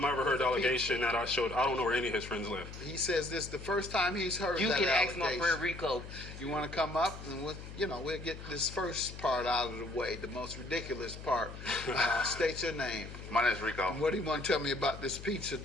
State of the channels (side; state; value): left; noise; hum, 12 dB below the sound